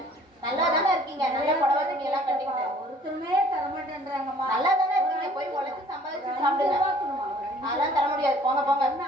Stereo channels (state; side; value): normal; both; correlation 0.54